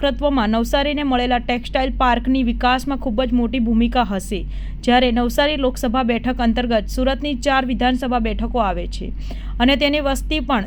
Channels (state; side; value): identical; both; correlation 1.00